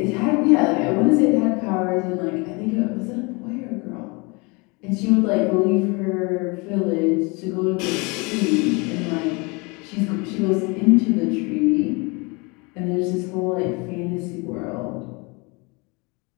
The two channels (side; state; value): right; quieter; 28.5 dB